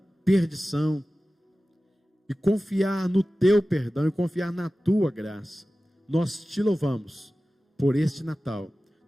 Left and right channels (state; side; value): normal; both; correlation 0.96